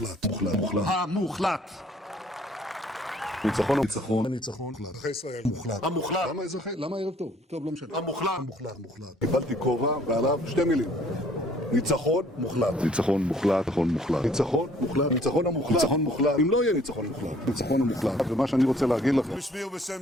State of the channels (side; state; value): both; normal; correlation 0.59